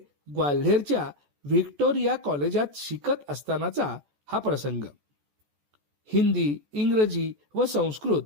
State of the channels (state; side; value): late; left; 14 ms